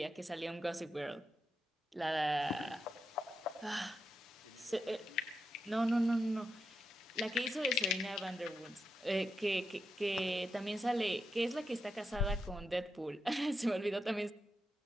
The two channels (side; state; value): both; normal; correlation 0.86